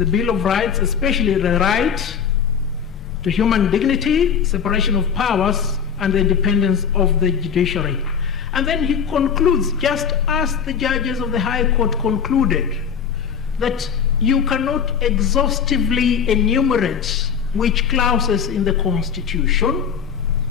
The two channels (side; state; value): right; quieter; 7.2 dB